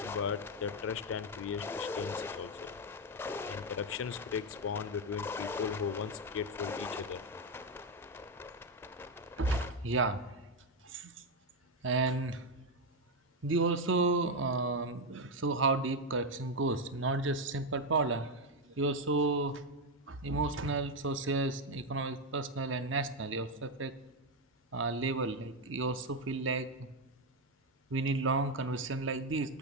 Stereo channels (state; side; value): normal; both; correlation 0.06